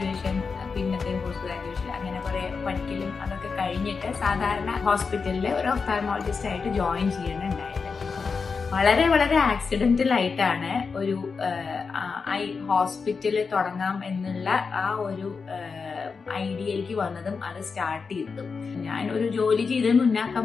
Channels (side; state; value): right; quieter; 5.1 dB